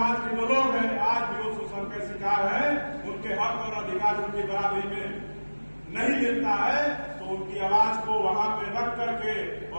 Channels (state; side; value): inverted; both; correlation -1.00